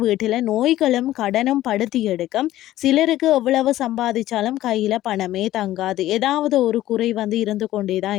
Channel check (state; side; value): quieter; right; 14.5 dB